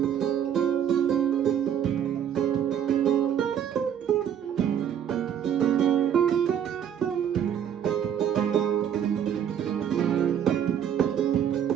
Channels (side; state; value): left; quieter; 9.2 dB